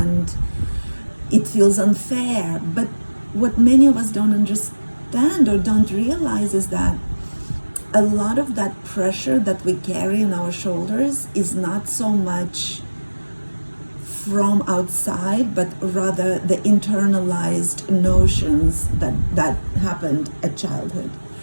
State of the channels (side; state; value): both; inverted; correlation -1.00